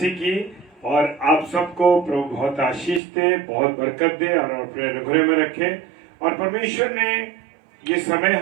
की। और आप सबको प्रभु बहुत आशीष दे, बहुत बरकत दे और अपने अनुग्रह में रखे। और परमेश्वर ने ये समय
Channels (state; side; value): drops out; left; at 3.0 s